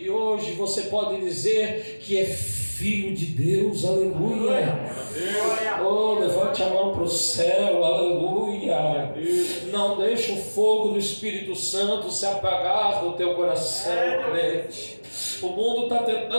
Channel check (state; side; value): inverted; both; correlation -1.00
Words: hoje você pode dizer que é filho de Deus, aleluia. Levante a mão para o céu, aleluia. Não deixe o fogo do Espírito Santo se apagar do teu coração, crente. O mundo está